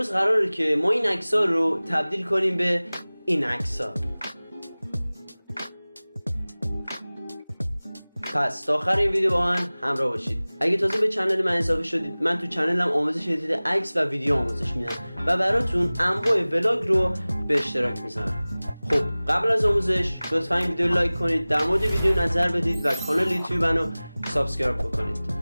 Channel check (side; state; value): both; inverted; correlation -0.99